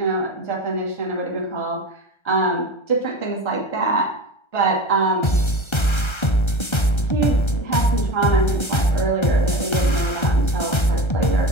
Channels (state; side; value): late; right; 1.3 ms